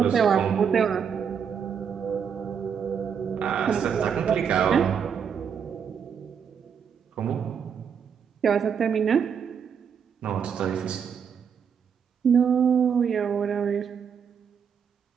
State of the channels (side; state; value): left; quieter; 7.2 dB